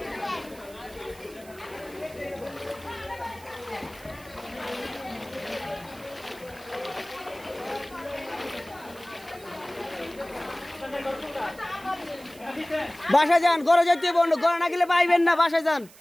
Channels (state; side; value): noise; right; hiss, 22 dB below the sound